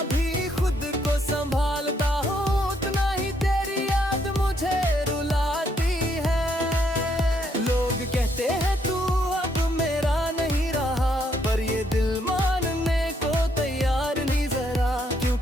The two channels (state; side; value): normal; both; correlation 0.73